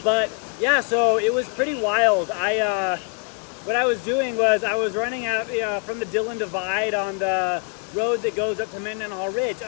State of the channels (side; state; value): right; quieter; 36.2 dB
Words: But yeah, so it was pretty wild. What I was doing was I was running out from the Dillon Divide on the road that goes up to Mendenhall Ridge,